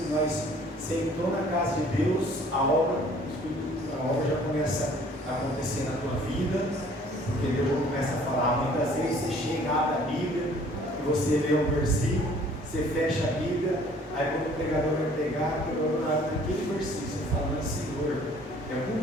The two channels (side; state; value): both; normal; correlation 0.55